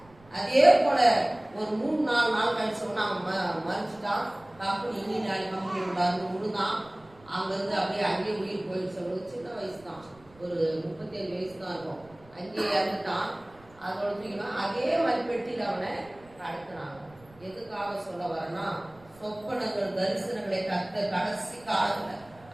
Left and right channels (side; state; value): right; noise; rumble, 26 dB below the sound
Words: அதே போல ஒரு 3-4 நாள் கழிச்சு சொன்னா அவன் மறிச்சுட்டான். கம்பெனி இன்ஜினியர் கம்பெனி விடாது முழுதான். அங்கிருந்து அப்படியே அங்கேயே உயிர் போயிடுச்சு. சின்ன வயசு தான், ஒரு 37 வயசு தான் இருக்கும். அங்கேயே இறந்துட்டான். அதோட தூக்கினா அதே மாதிரி பெட்டியில் அவனை கடத்தினாங்க. எதுக்காக சொல்ல வரேன்னா, சொப்பனங்கள் தரிசனங்களை கடைசி காலத்துல